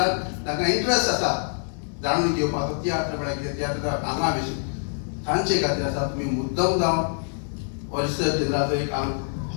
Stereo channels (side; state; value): right; silent; digital silence